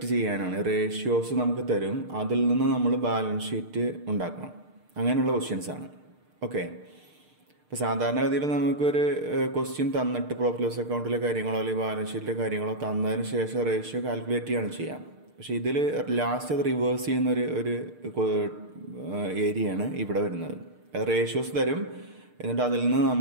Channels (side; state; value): left; late; 6.6 ms